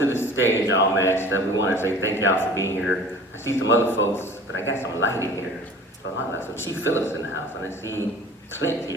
the stage, all matched up, we want to say thank y'all for being here. I see some other folks, but I got some lighting here. So Chief Phillips in the house, and I see Clint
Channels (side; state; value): both; normal; correlation 0.44